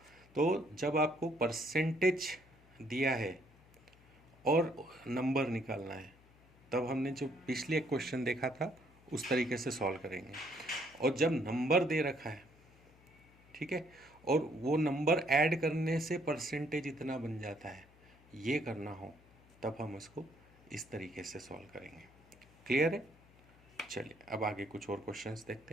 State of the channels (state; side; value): noise; left; hum, 27 dB below the sound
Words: तो जब आपको percentage दिया है और number निकालना है, तब हमने जो पिछले एक क्वेश्चन देखा था उस तरीके से सॉल्व करेंगे। और जब नंबर दे रखा है, ठीक है, और वो नंबर ऐड करने से परसेंटेज इतना बन जाता है, ये करना हो तब हम उसको इस तरीके से सॉल्व करेंगे। क्लियर है। चलिए अब आगे कुछ और क्वेश्चंस